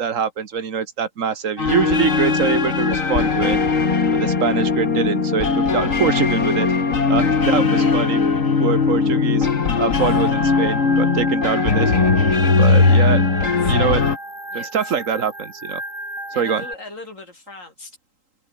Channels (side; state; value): left; late; 3.8 ms